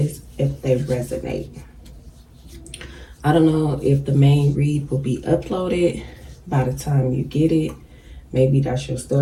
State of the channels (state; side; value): identical; both; correlation 1.00